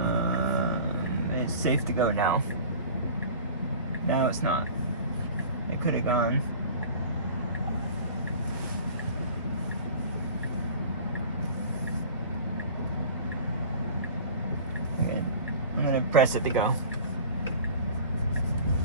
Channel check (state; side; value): inverted; both; correlation -0.41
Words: It's safe to go now. Now it's not. It could have gone. Okay. I'm gonna press it to go.